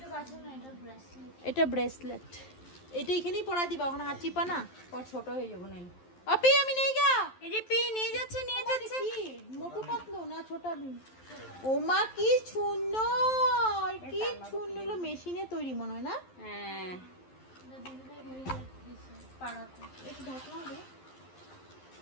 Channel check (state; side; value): late; right; 11 ms